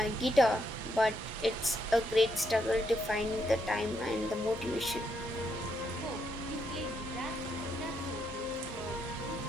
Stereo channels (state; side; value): normal; both; correlation 0.77